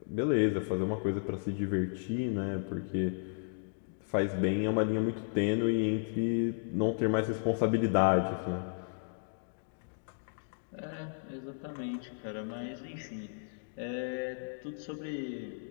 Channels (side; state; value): right; silent; digital silence